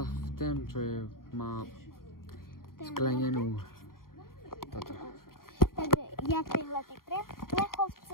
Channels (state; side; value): late; right; 0.92 ms